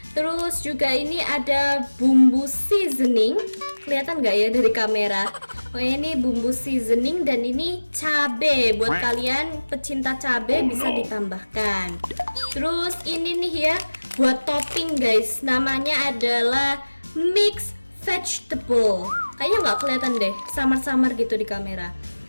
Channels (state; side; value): inverted; both; correlation -1.00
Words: Terus juga ini ada bumbu seasoning, kelihatan nggak ya dari kamera? Oh ini bumbu seasoning dan ini cabe. Buat kalian pecinta cabe bisa ditambahkan. Terus ini nih ya, buat topping guys, namanya adalah mix vegetable. Kayaknya nggak kelihatan deh, samar-samar gitu di kamera.